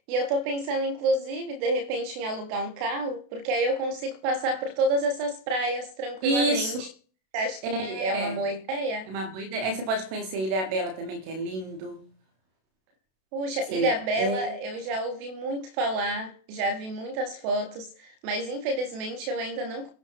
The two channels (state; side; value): late; left; 32 ms